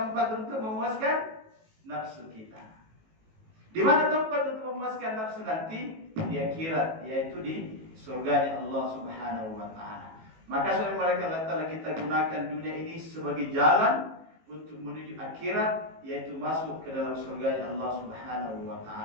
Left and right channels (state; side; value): late; left; 18 ms